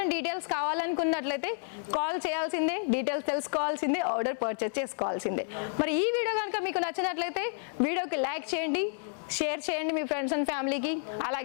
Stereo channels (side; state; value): right; silent; digital silence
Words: డీటెయిల్స్ కావాలనుకున్నట్లయితే కాల్ చేయాల్సిందే, డీటెయిల్స్ తెలుసుకోవాల్సిందే, ఆర్డర్ పర్చేస్ చేసుకోవాల్సిందే. మరి ఈ వీడియో కనుక మీకు నచ్చినట్లయితే వీడియోకి లైక్ చేయండి, షేర్ చేయండి మీ ఫ్రెండ్స్ అండ్ ఫ్యామిలీకి,